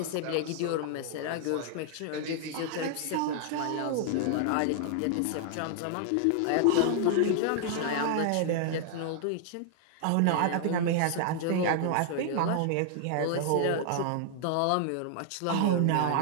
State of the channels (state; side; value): different; both; correlation -0.01